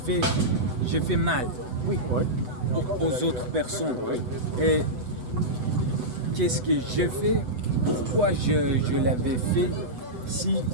fait mal Oui. aux autres personnes. Et qu'est-ce que j'ai fait? Pourquoi je l'avais fait si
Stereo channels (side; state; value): left; late; 8.0 ms